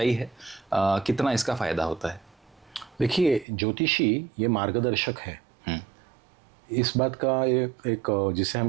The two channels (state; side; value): drops out; left; at 3.5 s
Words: है, कितना इसका फायदा होता है? देखिए, ज्योतिषी ये मार्गदर्शक है। इस बात का एक जिसे